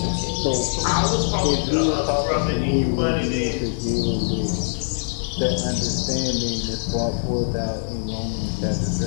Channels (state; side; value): silent; right; digital silence